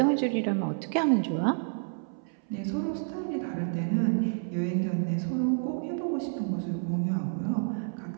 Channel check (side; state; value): left; silent; 58 dB below the other